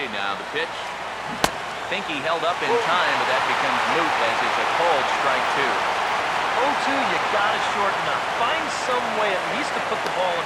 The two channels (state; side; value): identical; both; correlation 1.00